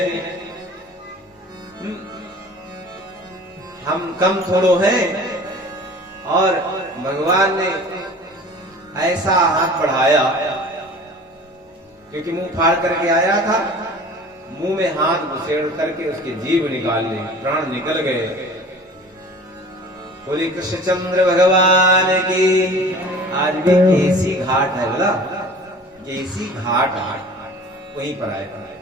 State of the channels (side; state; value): both; normal; correlation 0.43